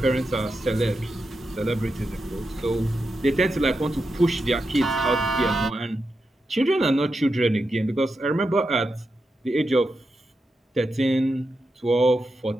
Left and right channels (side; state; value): both; normal; correlation 0.88